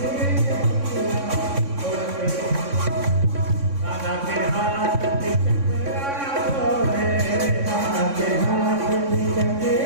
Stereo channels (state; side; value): late; left; 3.6 ms